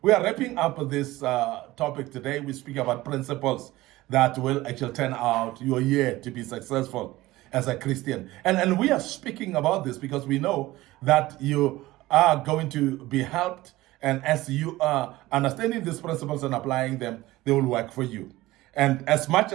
We are wrapping up this topic today. We speak about principles that will actually turn out your year to be successful as a Christian. And we are speaking about this because we know that you are going to be helped. And as you are understanding these principles and applying them, they will work for you. And as much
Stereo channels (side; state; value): left; quieter; 18.0 dB